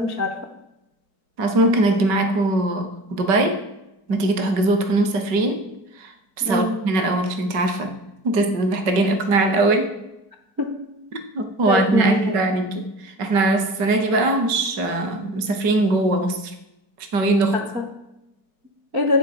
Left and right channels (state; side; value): late; left; 5.2 ms